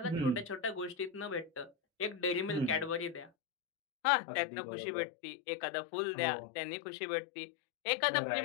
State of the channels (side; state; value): right; drops out; at 3.3 s